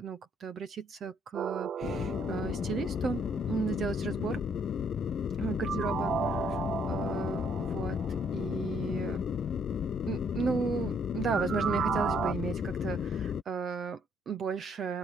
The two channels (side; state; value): both; normal; correlation 0.66